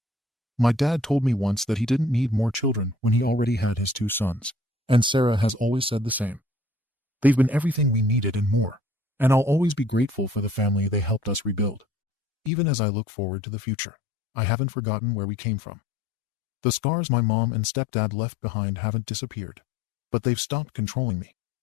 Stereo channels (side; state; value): right; drops out; at 12.5 s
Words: My dad told me once that he didn't need more children when he already had his 2 sons, and Sarah has always said the same. They've been everything we needed and more, and I'll always be grateful for the family they helped us rebuild. Even as I look forward to the future, I haven't forgotten where we came from. The scars my mom and stepdad left behind haven't disappeared, but they've stopped controlling me.